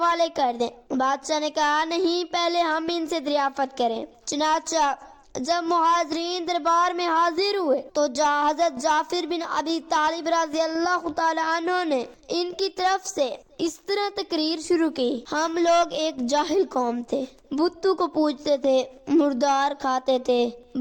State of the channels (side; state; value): both; identical; correlation 1.00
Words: کر دیں۔ بادشاہ نے کہا، نہیں، پہلے ہم ان سے دریافت کریں۔ چنانچہ جب مہاجرین دربار میں حاضر ہوئے تو حضرت جعفر بن ابی طالب رضی اللہ تعالی عنہ نے ان کی طرف سے اس طرح تقریر شروع کی، ہم لوگ ایک جاہل قوم تھے، بتوں کو پوجتے تھے، مردار کھاتے تھے،